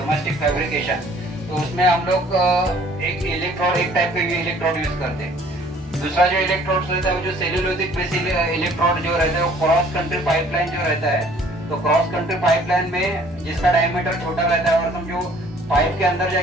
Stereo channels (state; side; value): normal; both; correlation 0.56